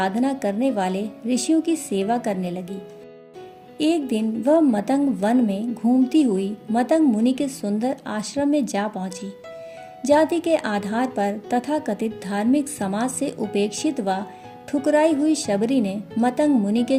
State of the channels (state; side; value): identical; both; correlation 1.00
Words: करने वाले ऋषियों की सेवा करने लगी। एक दिन वह मतंग वन में घूमती हुई मतंग मुनि के सुंदर आश्रम में जा पहुंची। जाति के आधार पर तथाकथित धार्मिक समाज से उपेक्षित व ठुकराई हुई शबरी ने मतंग मुनि के